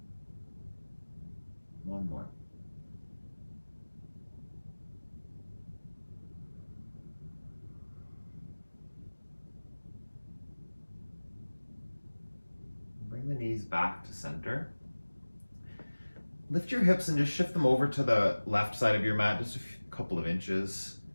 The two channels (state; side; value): inverted; both; correlation -1.00